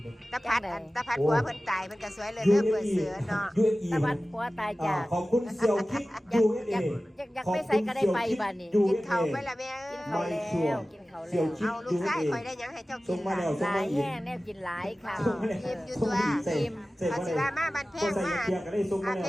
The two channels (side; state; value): both; normal; correlation 0.96